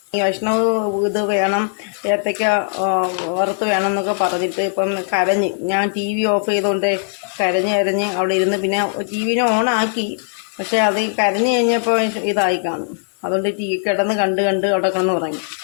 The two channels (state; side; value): silent; right; digital silence